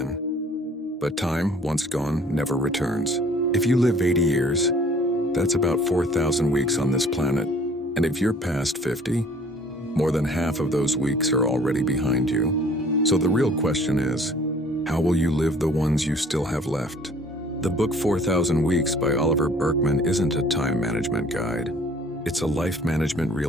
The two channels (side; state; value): both; normal; correlation 0.54